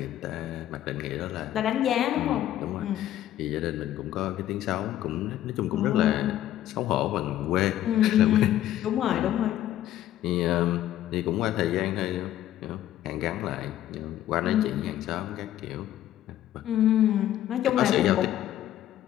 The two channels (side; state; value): right; quieter; 12.5 dB